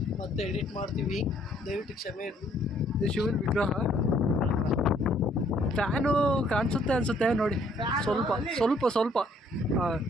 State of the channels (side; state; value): both; normal; correlation 0.64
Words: ಮತ್ತೆ ಎಡಿಟ್ ಮಾಡ್ತೀವಿ, ದಯವಿಟ್ಟು ಕ್ಷಮೆ ಇರಲಿ. ಇದು ಶಿವನ ವಿಗ್ರಹ. ಫ್ಯಾನು ಕಾಣಿಸುತ್ತೆ ಅನಿಸುತ್ತೆ ನೋಡಿ, ಸ್ವಲ್ಪ.